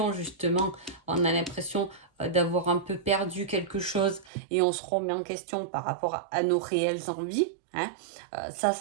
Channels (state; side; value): drops out; left; at 4.3 s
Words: justement, on a l'impression d'avoir un peu perdu quelque chose et on se remet en question par rapport à nos réelles envies. Hein.